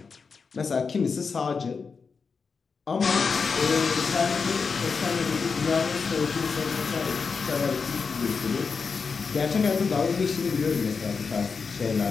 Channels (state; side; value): quieter; right; 5.2 dB